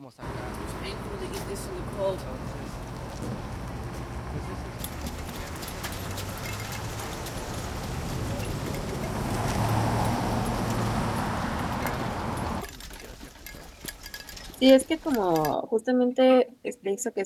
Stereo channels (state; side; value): identical; both; correlation 1.00